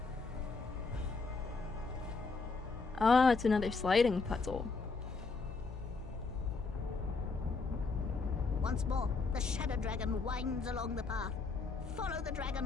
Ah, it's another sliding puzzle. Once more, the shadow dragon winds along the path. Follow the dragon,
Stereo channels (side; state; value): right; quieter; 4.2 dB